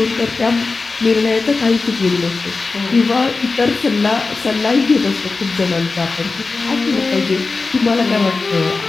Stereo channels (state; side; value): quieter; right; 3.9 dB